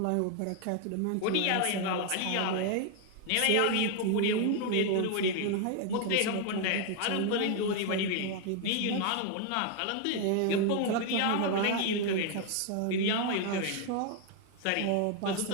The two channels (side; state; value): both; different; correlation 0.01